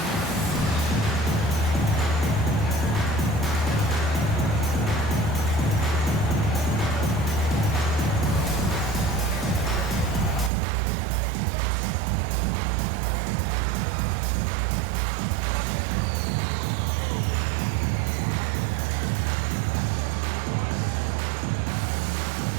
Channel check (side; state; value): left; drops out; at 10.5 s